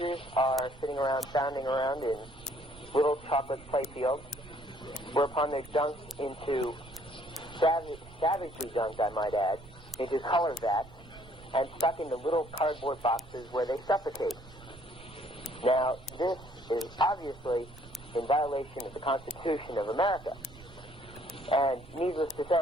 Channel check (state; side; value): noise; right; rumble, 20 dB below the sound